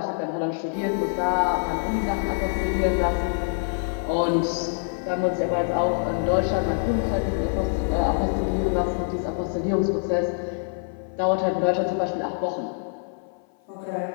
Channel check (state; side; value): silent; right; 58 dB below the other